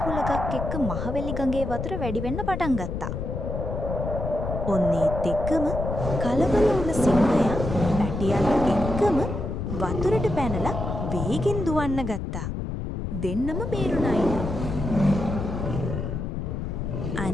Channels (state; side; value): noise; left; rumble, 4 dB below the sound